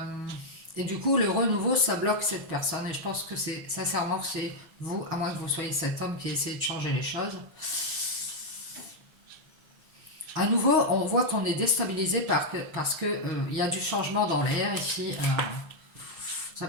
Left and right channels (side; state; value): left; late; 6.1 ms